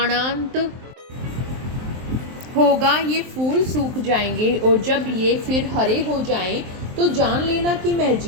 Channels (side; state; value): left; late; 23 ms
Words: होगा ये फूल सूख जाएंगे और जब ये फिर हरे हो जाएं तो जान लेना कि मैं